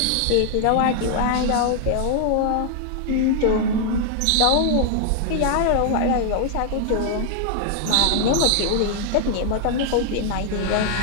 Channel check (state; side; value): different; both; correlation 0.00